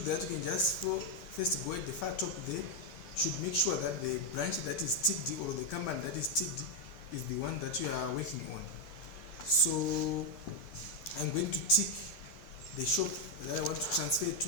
that, you can just first go at the far top there. You should make sure that the branch that is ticked or the company that is ticked is the one that you are working on. So I'm going to tick the shop that I want to transfer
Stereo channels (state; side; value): late; right; 11 ms